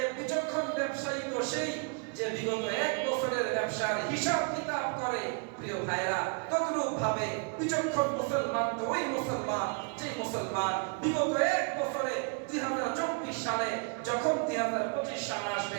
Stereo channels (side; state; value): left; quieter; 35.7 dB